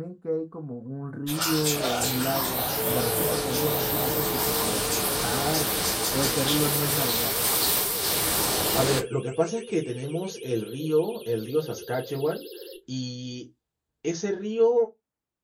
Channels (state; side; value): identical; both; correlation 1.00